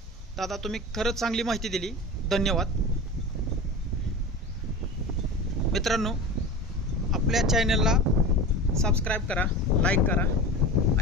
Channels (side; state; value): both; normal; correlation 0.31